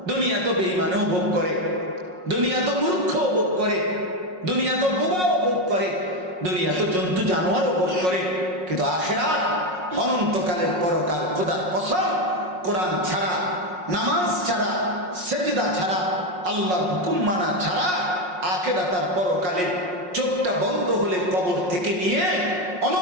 দুনিয়া তো বেঈমানও ভোগ করে, দুনিয়া তো মূর্খও ভোগ করে, দুনিয়া তো বোবাও ভোগ করে, দুনিয়া তো জন্তু জানোয়ারও ভোগ করে। কিন্তু আখিরাত অনন্তকালের পরকাল, খোদার কসম, কোরআন ছাড়া, নামাজ ছাড়া, সেজদা ছাড়া, আল্লাহর হুকুম মানা ছাড়া আখিরাতের পরকালে চোখটা বন্ধ হলে কবর থেকে নিয়ে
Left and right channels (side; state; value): left; late; 5.5 ms